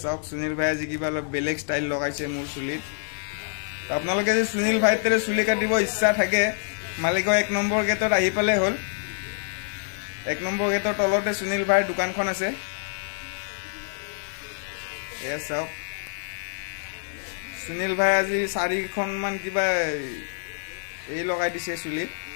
চাওক সুনীল ভাই আজি কিবা অলপ বেলেগ ষ্টাইল লগাইছে মোৰ চুলিত। আপোনালোকে যদি সুনীল ভাইৰ দৰে চুলি কাটিব ইচ্ছা থাকে মালিগাঁও 1 নম্বৰ গেটত আহি পালে হ'ল। 1 নম্বৰ গেটৰ তলতে সুনীল ভাইৰ দোকানখন আছে। এয়া চাওক সুনীল ভাই আজি 4খনমান কিবা এই লগাই দিছে চুলিত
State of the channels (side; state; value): right; silent; 61 dB below the other